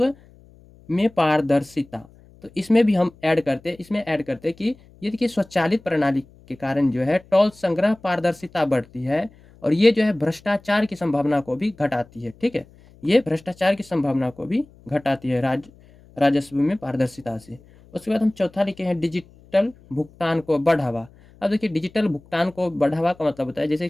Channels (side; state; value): left; noise; hum, 26 dB below the sound